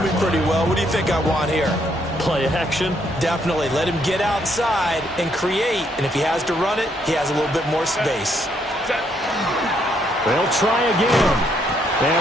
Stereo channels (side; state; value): both; normal; correlation 0.72